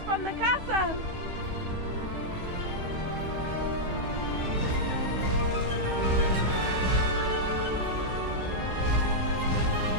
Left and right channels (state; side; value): late; left; 16 ms